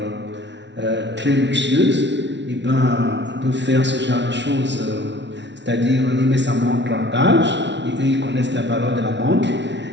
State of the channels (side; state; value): left; late; 0.51 ms